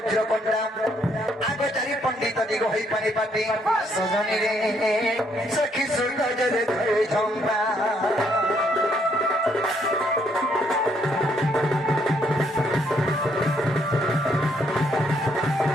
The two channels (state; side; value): normal; both; correlation 0.71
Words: কন্যা আগে চারি পণ্ডিত দিগ হই পানি পাটি সজনি রে সখী সৌন্দর্যরে ধরে ঝম্বা